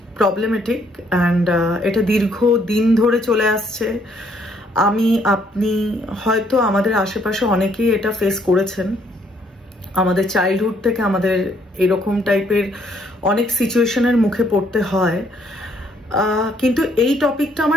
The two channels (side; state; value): both; normal; correlation 0.68